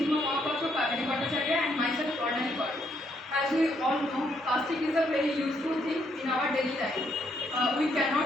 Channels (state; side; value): normal; both; correlation 0.73